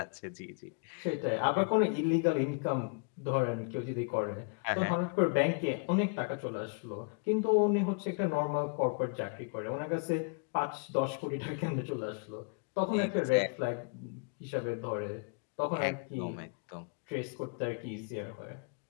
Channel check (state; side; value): quieter; right; 35.8 dB